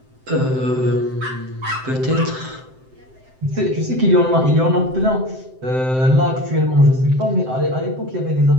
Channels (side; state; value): left; late; 7.7 ms